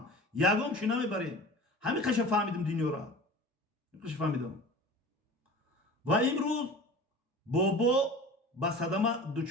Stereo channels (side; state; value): both; normal; correlation 0.38